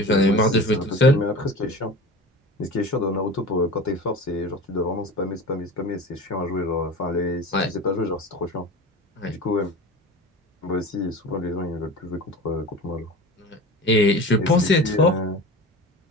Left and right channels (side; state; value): both; normal; correlation 0.34